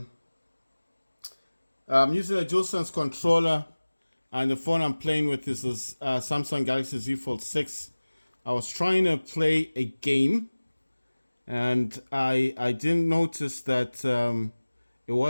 a DualSense controller, and the phone I'm playing with is a Samsung Galaxy Z Fold 6. I was trying to play a game, and I didn't notice that it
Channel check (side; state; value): both; inverted; correlation -1.00